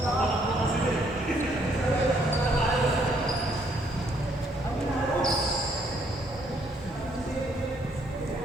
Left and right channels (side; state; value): both; normal; correlation 0.68